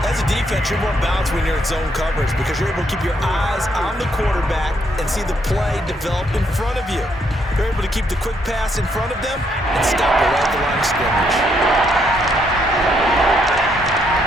As a defense, you're more balanced when you're in zone coverage because you're able to keep your eyes on the quarterback and see the play develop in front of you. You're able to keep the quick pass in front of them and stop it right at the line of scrimmage.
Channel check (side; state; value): both; normal; correlation 0.73